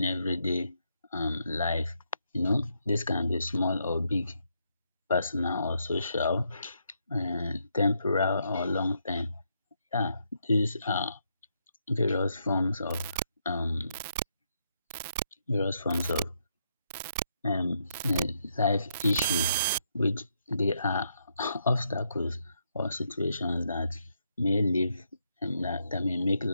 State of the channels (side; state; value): both; inverted; correlation -0.77